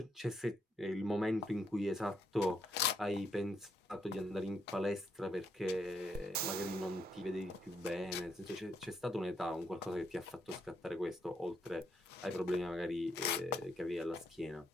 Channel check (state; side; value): normal; both; correlation 0.75